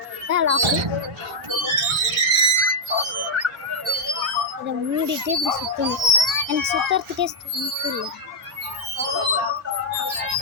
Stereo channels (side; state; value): both; normal; correlation -0.06